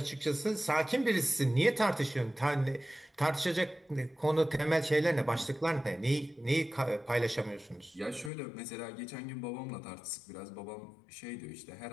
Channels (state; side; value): drops out; right; at 8.3 s